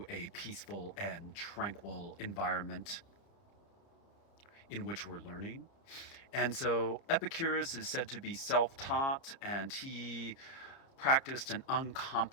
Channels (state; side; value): late; right; 29 ms